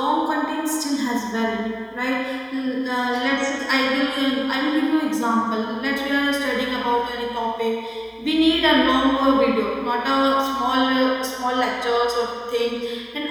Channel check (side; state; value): both; identical; correlation 1.00